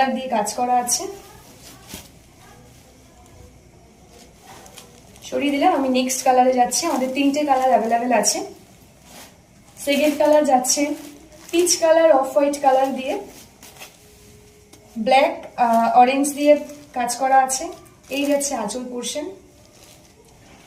দিয়ে কাজ করা আছে। সরিয়ে দিলাম, আমি নেক্সট কালারে যাচ্ছি। আমাদের তিনটে কালার অ্যাভেলেবেল আছে। সেকেন্ড কালার যাচ্ছে peach colour, off white colour দিয়ে ব্ল্যাক অরেঞ্জ দিয়ে কাজ করা আছে। এই যাচ্ছে আঁচল পোর্শন।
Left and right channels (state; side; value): identical; both; correlation 1.00